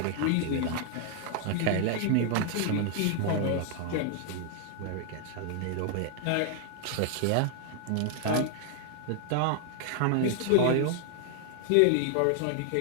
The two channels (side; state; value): both; different; correlation 0.00